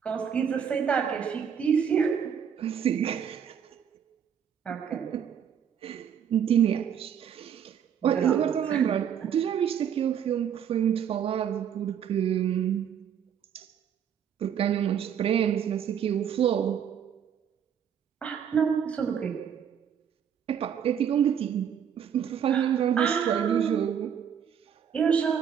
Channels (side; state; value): left; quieter; 8.3 dB